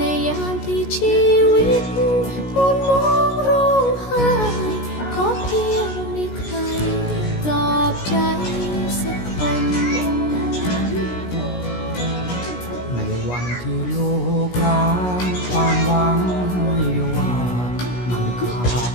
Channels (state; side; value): late; right; 16 ms